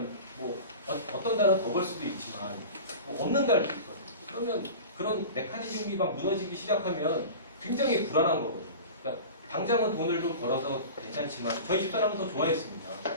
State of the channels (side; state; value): both; inverted; correlation -0.35